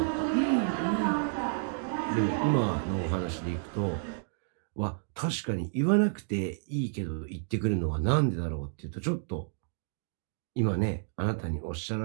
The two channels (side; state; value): left; silent; digital silence